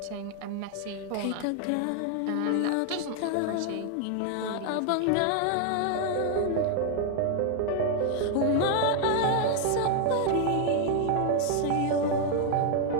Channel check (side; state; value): both; different; correlation 0.00